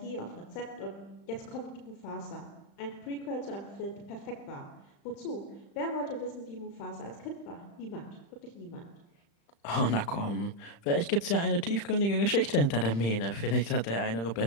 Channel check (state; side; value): late; right; 35 ms